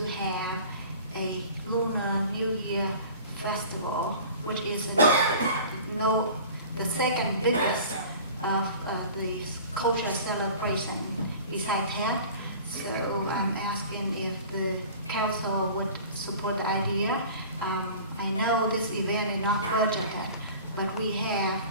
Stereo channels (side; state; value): both; inverted; correlation -0.42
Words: have a Lunar New Year Festival, which is the second biggest of the cultural celebration besides that. So I'm asking if the council would support the idea. I know this event is not budgeted, but we have